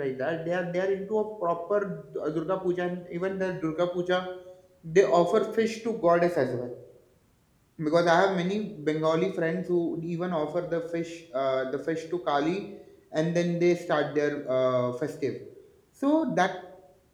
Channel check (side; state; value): both; identical; correlation 1.00